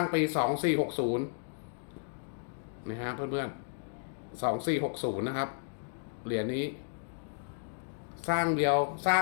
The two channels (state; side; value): silent; right; digital silence